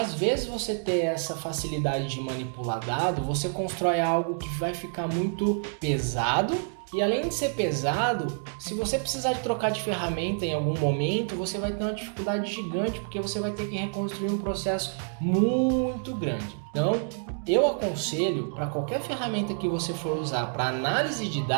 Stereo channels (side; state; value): left; silent; 59 dB below the other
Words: vezes você ter essa facilidade de manipular dado, você constrói algo que vai ficar muito pesado. E além de ser pesado, se você precisar de trocar de ferramenta em algum momento, você vai ter uma dificuldade gigante, porque você vai ter que reconstruir um processo muito grande. Então, eu aconselho para qualquer ferramenta que você for usar para análise de